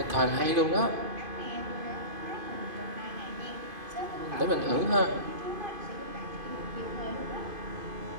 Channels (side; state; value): left; late; 2.5 ms